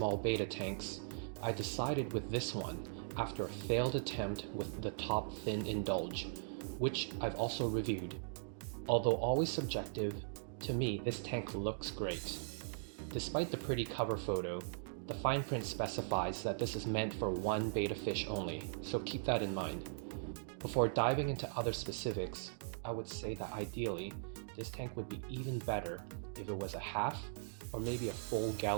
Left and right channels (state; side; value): silent; left; digital silence